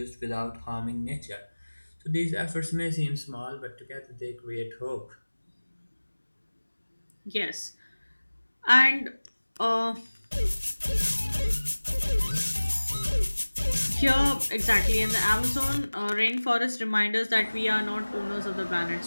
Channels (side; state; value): both; inverted; correlation -1.00